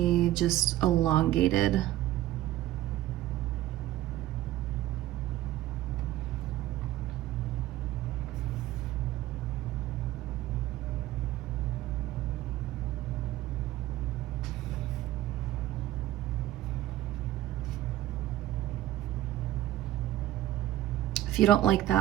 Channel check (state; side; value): quieter; left; 14.5 dB